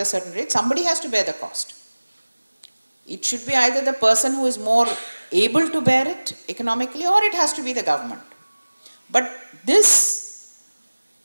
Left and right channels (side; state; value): both; inverted; correlation -1.00